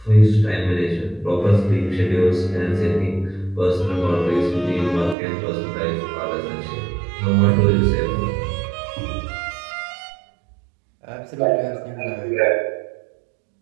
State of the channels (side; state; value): left; drops out; at 5.2 s